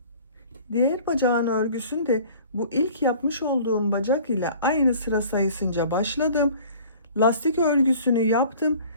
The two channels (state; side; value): inverted; both; correlation -0.48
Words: Diğer bacağın örgüsünde bu ilk yapmış olduğum bacak ile aynı sıra sayısınca başladım. Lastik örgüsünü yaptım.